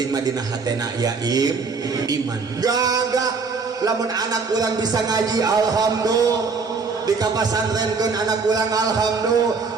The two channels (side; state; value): left; quieter; 4.8 dB